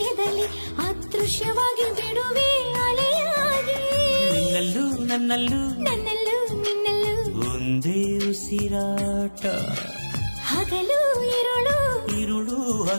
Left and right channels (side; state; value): both; inverted; correlation -1.00